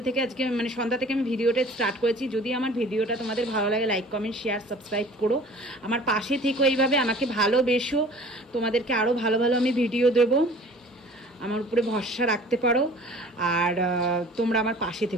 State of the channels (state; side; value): normal; both; correlation 0.47